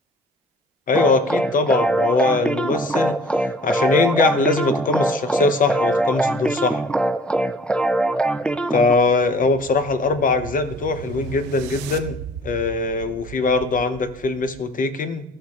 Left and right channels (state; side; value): normal; both; correlation 0.50